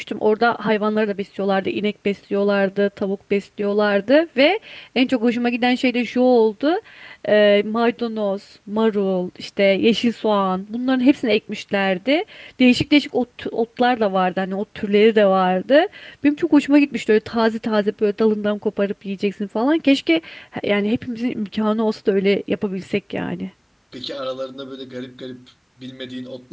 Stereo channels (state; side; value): identical; both; correlation 1.00